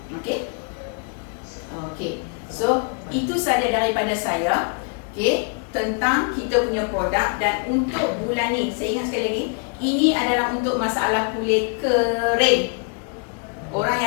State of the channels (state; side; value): quieter; right; 39.9 dB